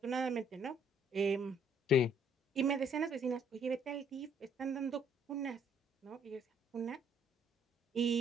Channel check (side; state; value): both; normal; correlation 0.64